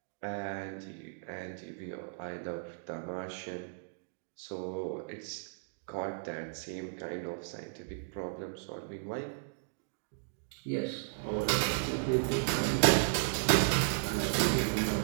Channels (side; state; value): left; silent; digital silence